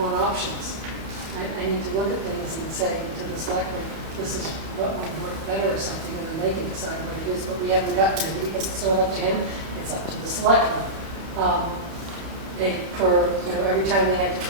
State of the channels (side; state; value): left; late; 31 ms